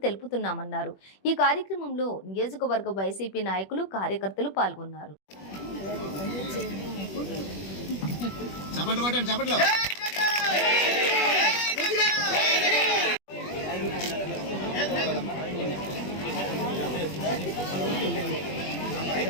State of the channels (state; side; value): late; right; 21 ms